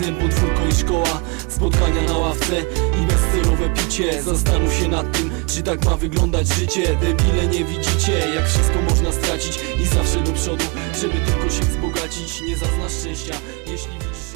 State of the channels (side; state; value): left; quieter; 31.3 dB